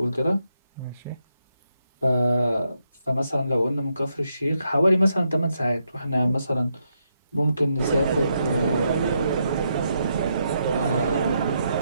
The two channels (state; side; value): inverted; both; correlation -0.80